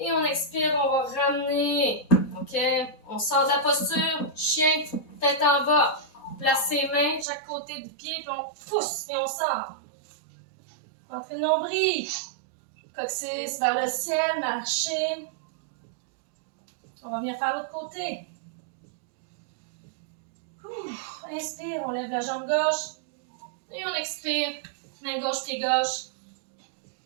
on expire, on va ramener. OK? On sort de la posture, chien, tête en bas. Place ses mains de chaque côté du pied, puis on pousse, et on sort. Entrez le nombril. Coccyx vers le ciel, marcher. On va venir faire l'autre côté. Inspire, on lève la jambe gauche. Et on expire, main gauche, pied gauche.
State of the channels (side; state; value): left; drops out; at 7.2 s